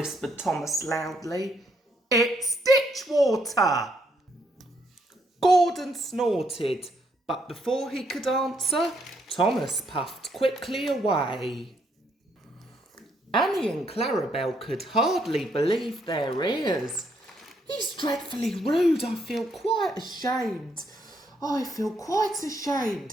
Thomas loudly. "It's ditch water." Gordon snorted, but before he could answer, Thomas puffed quickly away. Annie and Clarabelle could hardly believe their ears. "He's dreadfully rude. I feel quite ashamed.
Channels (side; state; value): both; normal; correlation 0.73